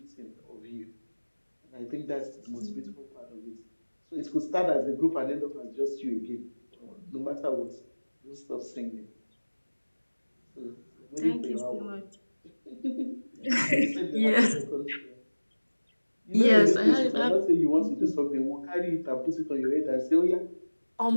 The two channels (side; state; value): both; inverted; correlation -1.00